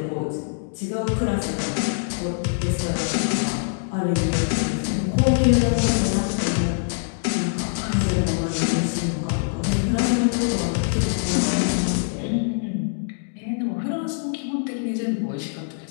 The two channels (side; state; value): right; silent; digital silence